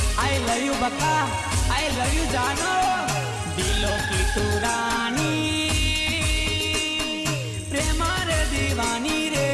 आई लव यू बक्का, आई लव यू जानो। दिलों की तू रानी, प्रेम रे दीवानी रे।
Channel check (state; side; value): identical; both; correlation 1.00